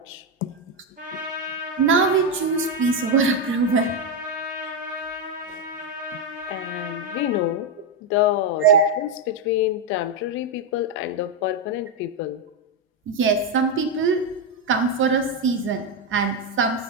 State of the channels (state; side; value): normal; both; correlation 0.06